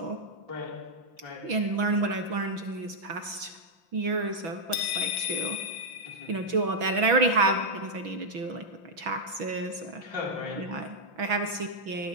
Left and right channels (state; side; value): late; left; 6.2 ms